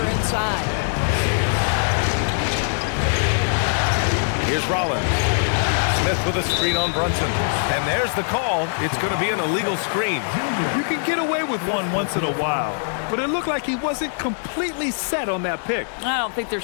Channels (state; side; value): silent; right; digital silence